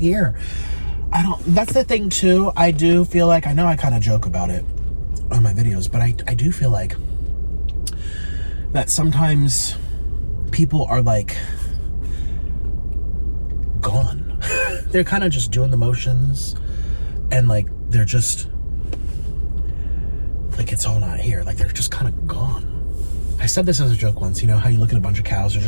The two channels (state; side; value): inverted; both; correlation -1.00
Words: That's the thing too. I do feel like, I know I kind of joke about it on my videos, but I do feel like that sometimes people are like gone. They're kind of just doing the motions, and like they're just like, it's all not here. Like, they're just kind of gone. I said this as a joke once, how you look at a bunch of cows, they're